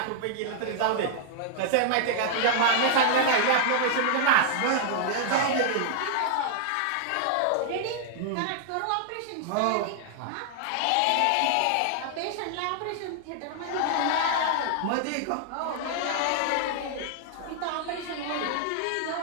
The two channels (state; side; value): different; both; correlation 0.00